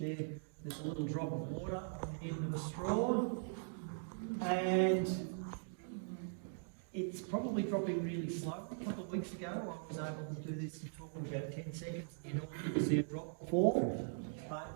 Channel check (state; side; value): silent; left; digital silence